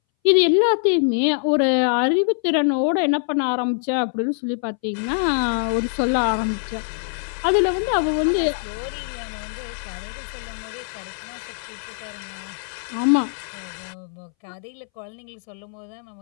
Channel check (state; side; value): silent; right; 62 dB below the other